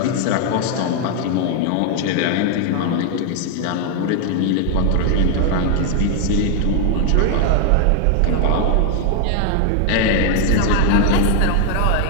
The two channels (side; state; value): both; different; correlation 0.00